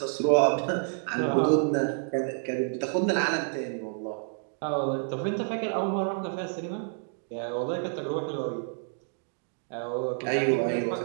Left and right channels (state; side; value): silent; left; 59 dB below the other